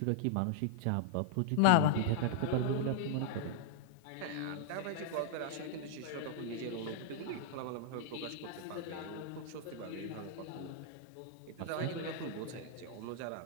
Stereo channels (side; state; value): both; different; correlation -0.01